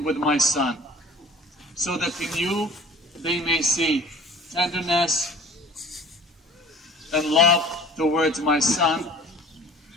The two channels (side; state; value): both; normal; correlation 0.45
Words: with my Son, so that in you they may see tenderness and love towards my Son,